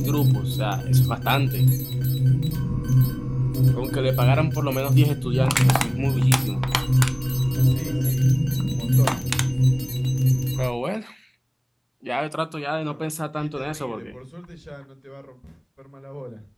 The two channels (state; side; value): identical; both; correlation 1.00